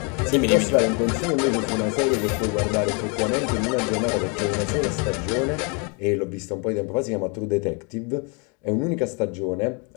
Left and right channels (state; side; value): quieter; right; 34.3 dB